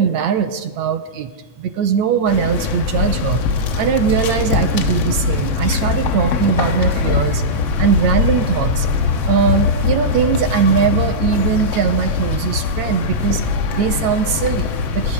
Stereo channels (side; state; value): left; late; 9.0 ms